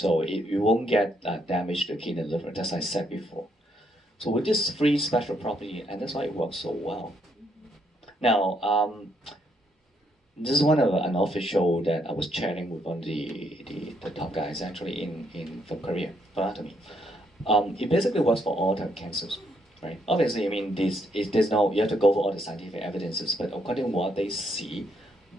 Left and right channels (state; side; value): normal; both; correlation 0.73